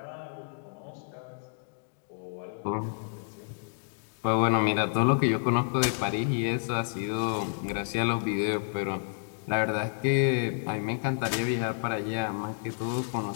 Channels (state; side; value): silent; right; digital silence